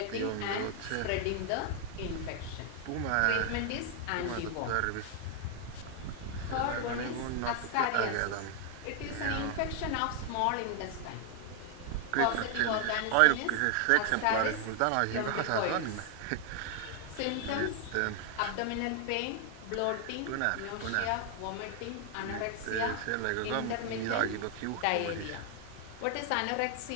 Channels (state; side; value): different; both; correlation 0.00